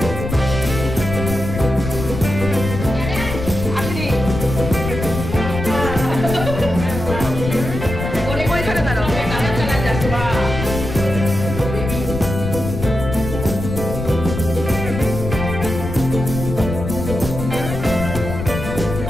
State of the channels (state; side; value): noise; left; rumble, 6 dB below the sound